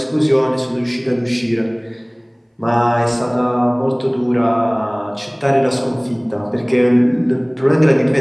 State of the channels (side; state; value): both; identical; correlation 1.00